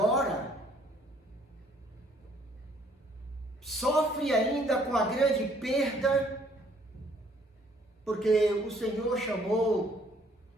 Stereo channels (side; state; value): both; normal; correlation 0.62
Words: sofre ainda com a grande perda, porque o Senhor chamou